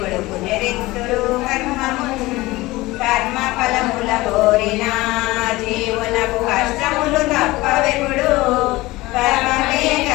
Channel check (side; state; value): right; quieter; 19.9 dB